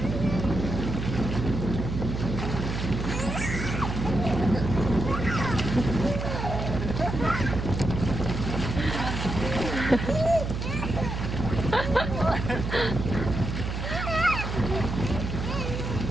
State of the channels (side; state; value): right; noise; hum, 4 dB below the sound